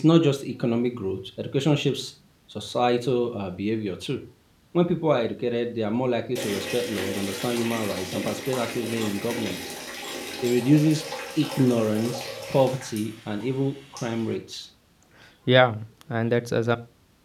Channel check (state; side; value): identical; both; correlation 1.00